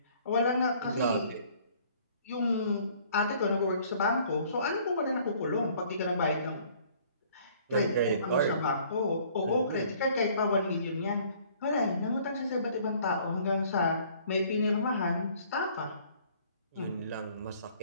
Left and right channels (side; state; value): both; inverted; correlation -0.57